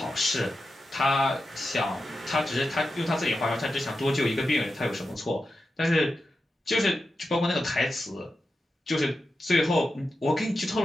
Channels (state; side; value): normal; both; correlation 0.90